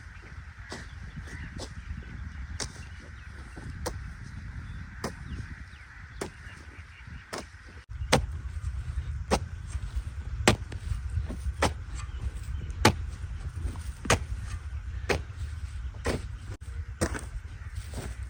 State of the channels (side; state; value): both; identical; correlation 1.00